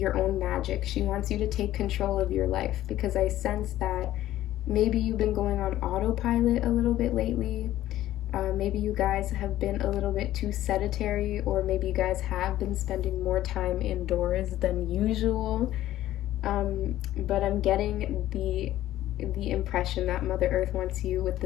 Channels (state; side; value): quieter; right; 13.9 dB